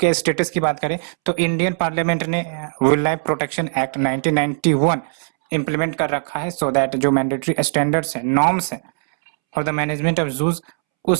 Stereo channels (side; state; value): left; silent; 66 dB below the other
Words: स्टेटस की बात करें तो इंडियन पार्लियामेंट ने wild life protection act 1991 implement कर रखा है, सो दैट जो मैंडेटरी स्टैंडर्ड्स है, नॉर्म्स है फॉर द मैनेजमेंट ऑफ जूज,